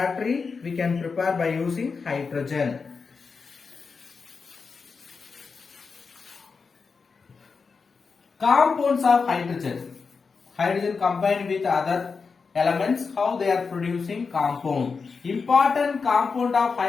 we can prepare by using hydrogen. Compounds of hydrogen. Hydrogen combined with other elements, how they are producing compound. Important compound of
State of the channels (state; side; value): quieter; right; 5.0 dB